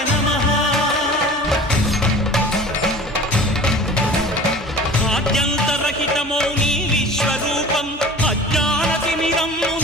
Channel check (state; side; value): normal; both; correlation 0.41